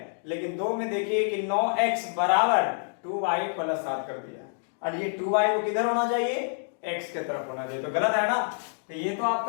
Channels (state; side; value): silent; right; digital silence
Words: लेकिन दो में देखिए कि 9x बराबर 2y प्लस 7 कर दिया, और ये 2y को किधर होना चाहिए, x के तरफ होना चाहिए, तो गलत है ना। तो ये तो